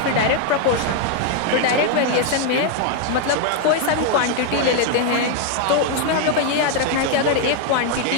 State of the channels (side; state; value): both; different; correlation 0.00